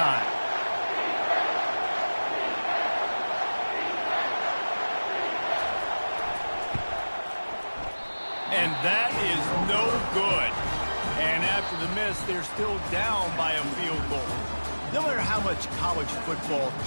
And that is no good. And after the miss, they're still down by a field goal. No matter how much college football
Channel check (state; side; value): inverted; both; correlation -1.00